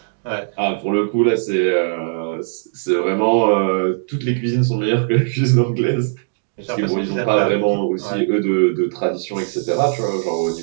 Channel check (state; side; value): silent; left; digital silence